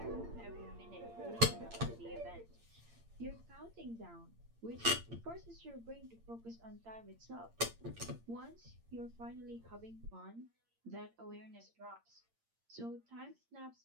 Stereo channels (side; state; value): left; late; 8.7 ms